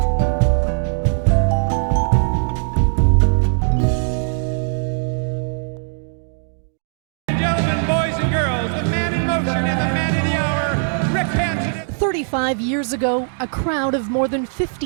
Gentlemen, boys and girls, the man in motion and the man of the hour, Rick Hansen. 35 years ago, a crowd of more than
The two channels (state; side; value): silent; left; 65 dB below the other